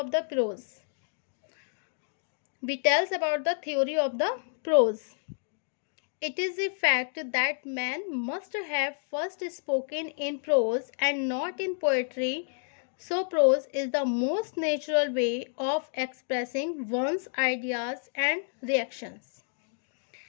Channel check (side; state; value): right; silent; digital silence